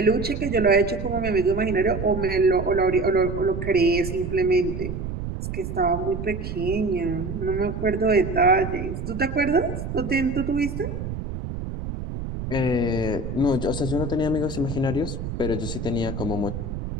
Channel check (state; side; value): noise; right; rumble, 6 dB below the sound